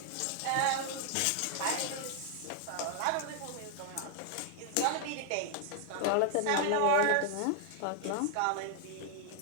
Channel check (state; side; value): different; both; correlation 0.00